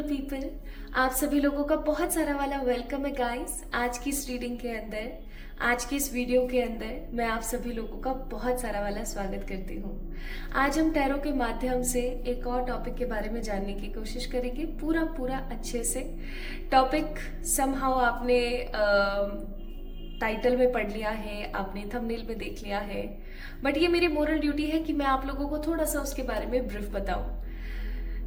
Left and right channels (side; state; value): both; identical; correlation 1.00